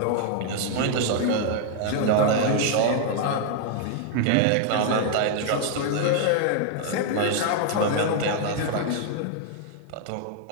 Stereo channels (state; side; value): different; both; correlation 0.00